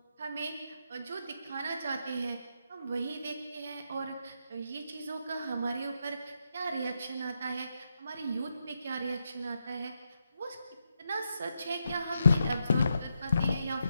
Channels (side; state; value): both; inverted; correlation -0.82